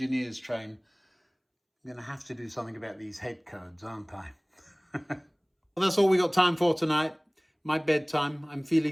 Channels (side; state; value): both; identical; correlation 1.00